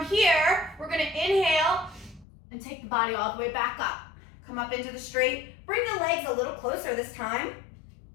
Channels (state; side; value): drops out; right; at 2.2 s